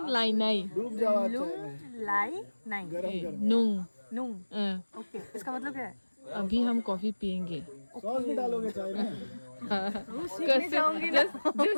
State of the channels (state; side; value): inverted; both; correlation -1.00